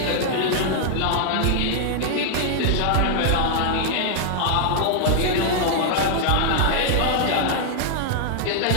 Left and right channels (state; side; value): different; both; correlation -0.01